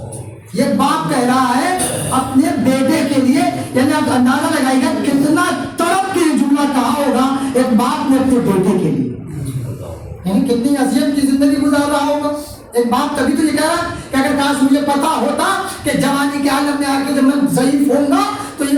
یہ باپ کہہ رہا ہے اپنے بیٹے کے لیے، یعنی آپ اندازہ لگائیے گا کتنا تڑپ کے جملہ کہا ہوگا ایک باپ نے اپنے بیٹے کے لیے، یعنی کتنی اذیت کی زندگی گزار رہا ہوگا ایک باپ. تبھی تو یہ کہہ رہا کہ اگر کاش مجھے پتا ہوتا کہ جوانی کے عالم میں آ کے جب میں ضعیف ہوں گا تو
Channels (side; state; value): both; identical; correlation 1.00